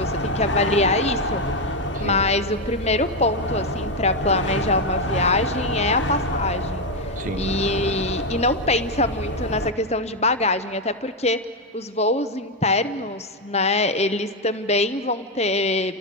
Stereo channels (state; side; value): normal; both; correlation 0.05